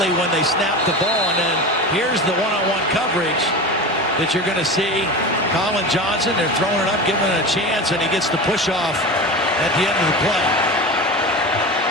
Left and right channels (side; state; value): both; normal; correlation 0.28